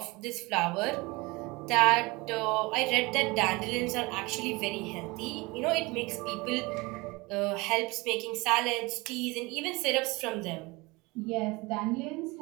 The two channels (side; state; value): left; quieter; 24.2 dB